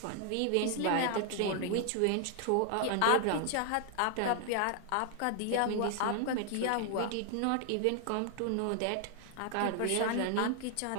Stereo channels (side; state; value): both; different; correlation 0.00